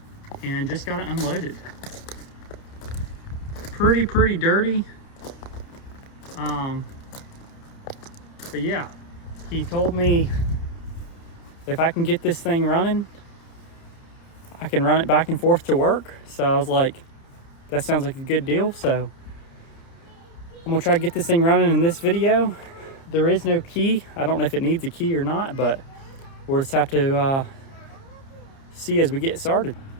and just got it unloaded. Pretty dirty. But yeah, he told me if I can get this thing running, I can run it back and forth to work. So I was like, that sounds like a good deal. So I'm gonna try to get this thing running in this video. There is no key. I don't know if it needs a key or not, but we'll just have to see as we get started.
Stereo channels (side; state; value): right; late; 30 ms